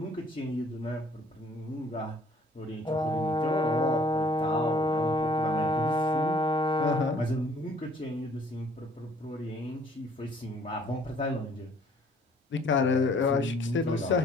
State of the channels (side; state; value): both; normal; correlation 0.58